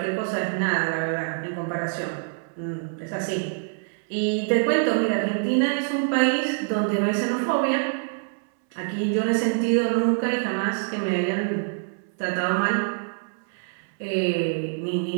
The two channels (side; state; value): left; silent; 62 dB below the other